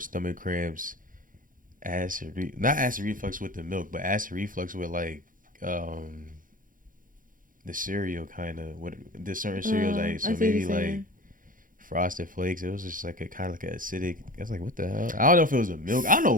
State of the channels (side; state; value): left; late; 0.40 ms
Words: stomach cramps, not acid reflux with the milk, but acid reflux with like the cereal kind of what the certain cereals I ate. I So see what maybe you're like saying. Frosted Flakes, it was just like a kind of like an acidic. I was like, what the hell? I don't know if it was the milk. I don't know